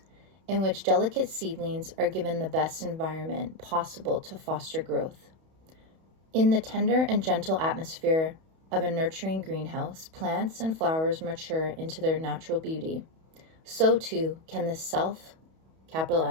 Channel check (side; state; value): left; late; 31 ms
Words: in which delicate seedlings are given the best environment possible to foster growth. In the tender and gentle atmosphere of a nurturing greenhouse, plants and flowers mature into their natural beauty. So too can the self, capital